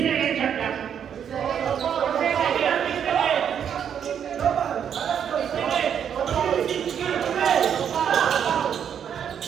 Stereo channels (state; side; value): quieter; left; 8.4 dB